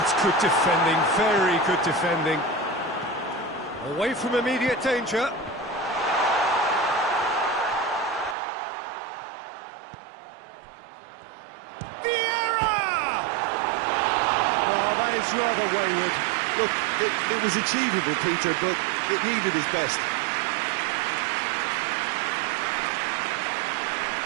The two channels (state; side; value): drops out; left; at 8.3 s